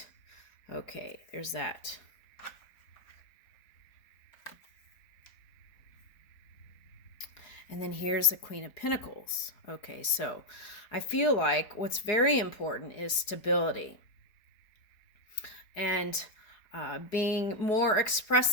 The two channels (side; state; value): right; late; 4.8 ms